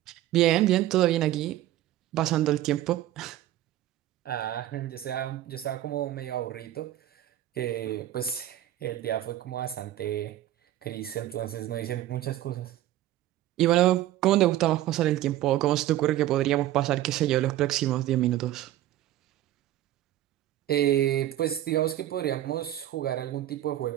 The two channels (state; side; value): quieter; left; 13.7 dB